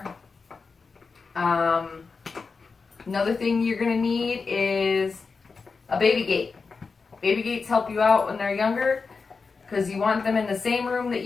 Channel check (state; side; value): quieter; right; 4.7 dB